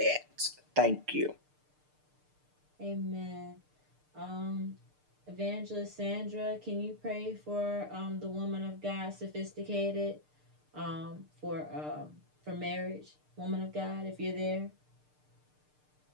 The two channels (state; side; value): late; left; 6.6 ms